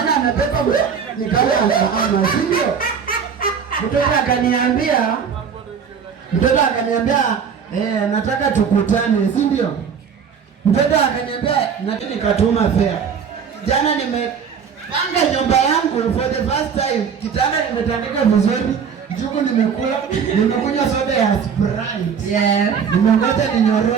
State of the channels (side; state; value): left; quieter; 6.8 dB